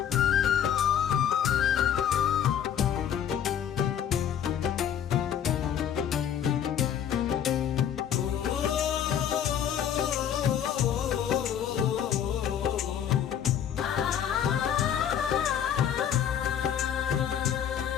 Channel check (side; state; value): right; quieter; 9.3 dB